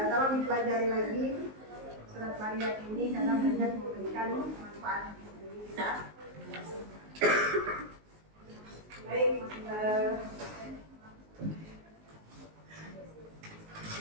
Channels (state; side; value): late; left; 19 ms